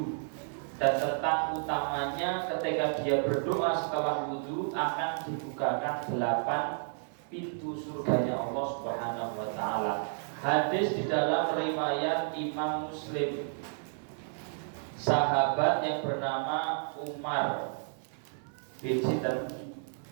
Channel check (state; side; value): silent; left; 57 dB below the other